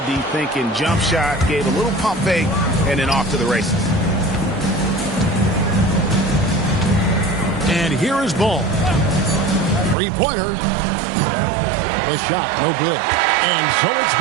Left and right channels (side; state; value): left; drops out; at 10.0 s